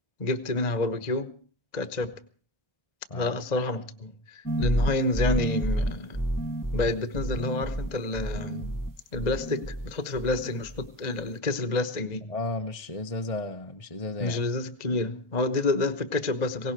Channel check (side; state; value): right; late; 1.9 ms